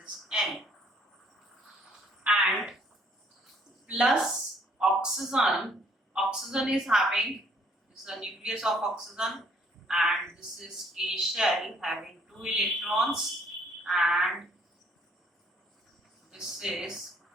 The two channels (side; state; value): both; normal; correlation 0.63